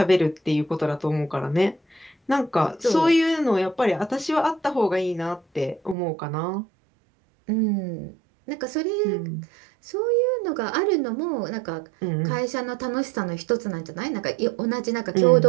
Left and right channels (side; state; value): left; drops out; at 6.0 s